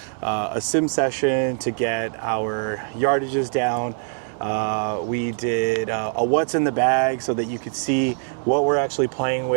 a sim session to get our yardages down. We did a what's in the bag so that you could see what we're actually playing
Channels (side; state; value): left; silent; 63 dB below the other